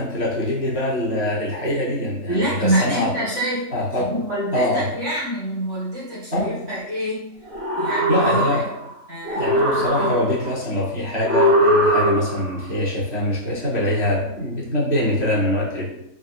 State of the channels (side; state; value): left; late; 3.4 ms